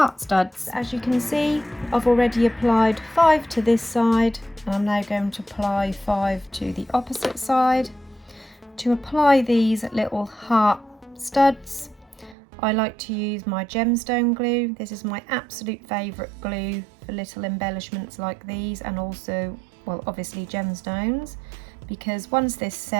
studs. As you can see, I've already applied 5 to this side, and I'm now going to apply 5 to the opposite side. To apply these little heart studs, I like to use my gemstone glue. This is my absolute favourite glue for little embellishments like these, and also, well, obviously gemstones, because once this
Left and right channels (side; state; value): left; drops out; at 12.4 s